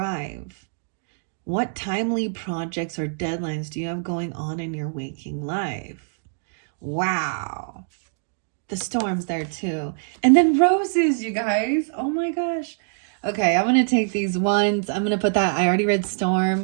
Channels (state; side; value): silent; left; digital silence